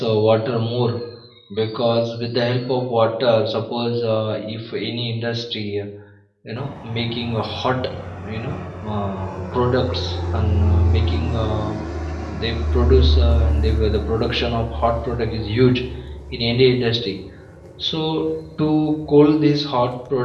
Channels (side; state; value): both; identical; correlation 1.00